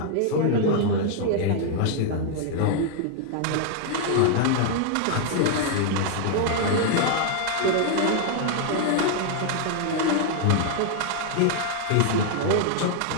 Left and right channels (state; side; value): different; both; correlation 0.00